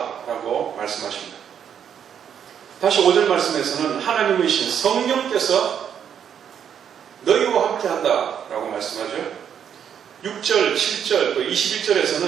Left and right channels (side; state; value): left; quieter; 8.5 dB